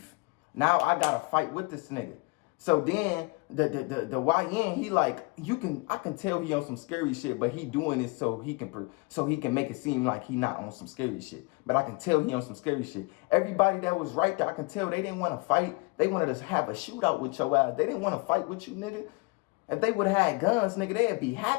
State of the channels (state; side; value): quieter; right; 27.7 dB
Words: Now I gotta fight with this nigga. So then the YN, he like, I can tell he on some scary shit, but he doing it so he can make it seem like he not on some scary shit. But I can tell he on some scary shit. Everybody that was right there, I can tell they didn't want to fight. They wanted to have a shootout with your ass. They didn't want to fight with you, nigga. If they would have had guns, nigga, they'd be